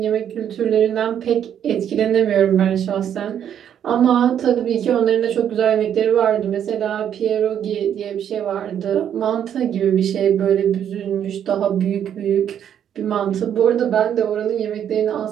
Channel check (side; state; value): left; quieter; 9.4 dB